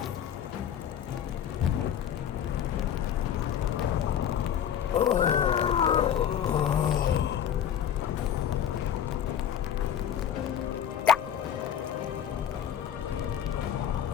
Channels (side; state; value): right; quieter; 9.5 dB